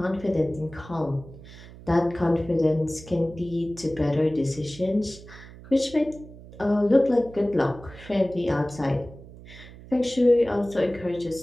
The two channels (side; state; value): right; noise; hum, 18 dB below the sound